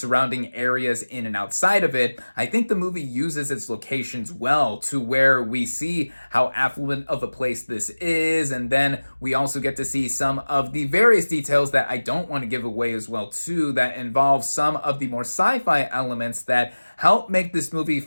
areas in and outside of it. I think the movie uses its locations well to where we see how affluent of a place this is, and then we also get to see some of the various details that I don't want to give away as well too, that involve some of the more sci-fi elements that help make this movie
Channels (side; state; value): both; inverted; correlation -1.00